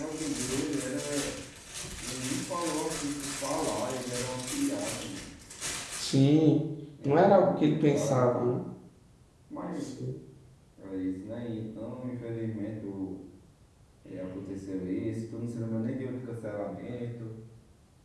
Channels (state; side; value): identical; both; correlation 1.00